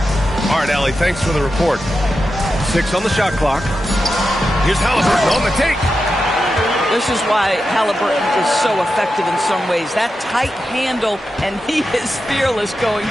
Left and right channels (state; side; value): normal; both; correlation 0.90